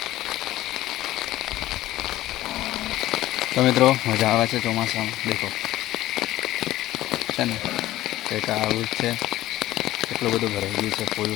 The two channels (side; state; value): right; quieter; 15.3 dB